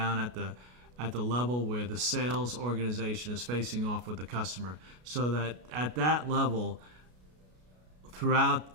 at the level where the sales organization is facing off with the customer, so that at that level,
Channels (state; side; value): late; left; 33 ms